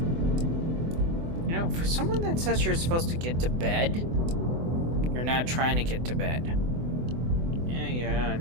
You know, for someone that says you're supposed to get to bed, you're not trying to get to bed. Yeah,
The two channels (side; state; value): left; late; 24 ms